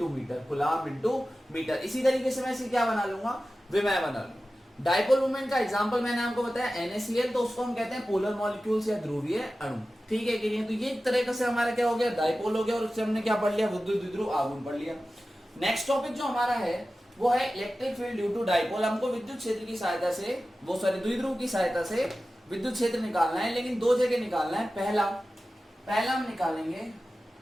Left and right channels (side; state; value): both; normal; correlation 0.95